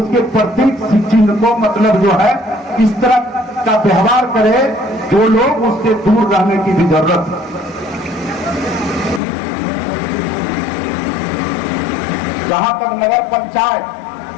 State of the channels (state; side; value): drops out; right; at 9.2 s